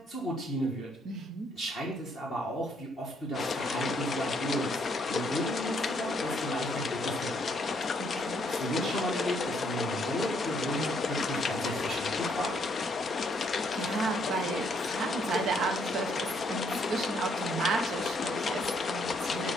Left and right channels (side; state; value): both; normal; correlation 0.70